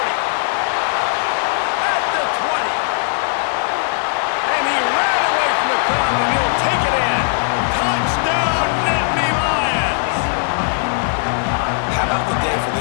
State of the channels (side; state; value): right; silent; 67 dB below the other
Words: At the 20. And he ran away from the crowd, and he'll take it in. Touchdown, Nittany Lions. How about the day for